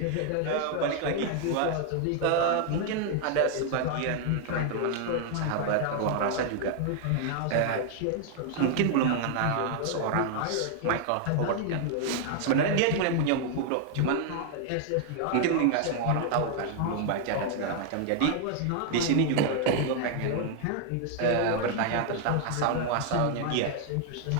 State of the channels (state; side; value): different; both; correlation 0.00